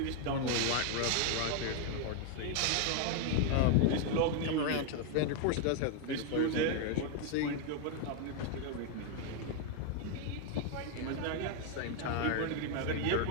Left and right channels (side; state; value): both; different; correlation 0.01